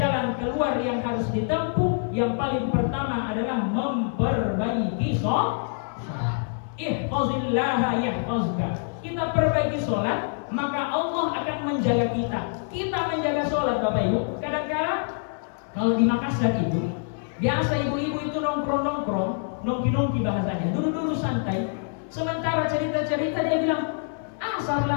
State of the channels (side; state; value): right; silent; 58 dB below the other